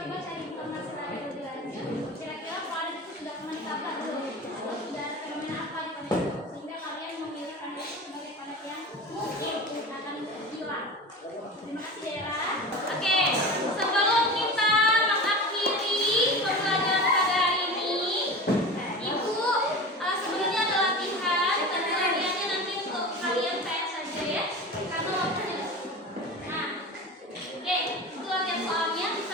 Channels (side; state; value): both; normal; correlation 0.31